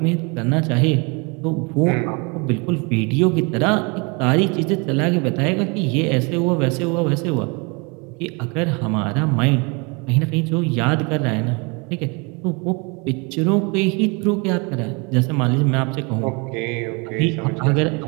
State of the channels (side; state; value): left; quieter; 30.3 dB